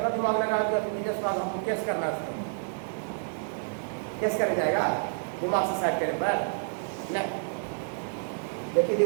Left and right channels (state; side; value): silent; left; digital silence